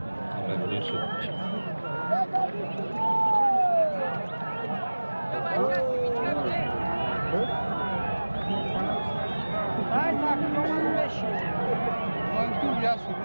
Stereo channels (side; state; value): both; inverted; correlation -1.00